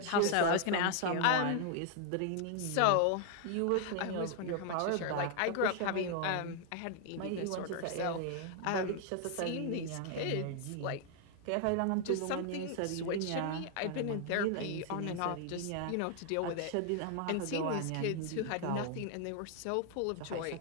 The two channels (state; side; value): different; both; correlation 0.00